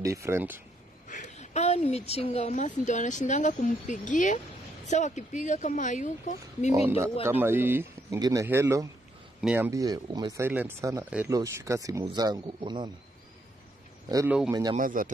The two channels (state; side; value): normal; both; correlation 0.74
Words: Ni michinga wa Masi ndio anashindanga kumpigia. Sawa kipiga kama hayuko, mimi ndio kama hii ingine, hello, niambie umesilent sana, hello shika simu zangu, unaona? Hello umenyamaza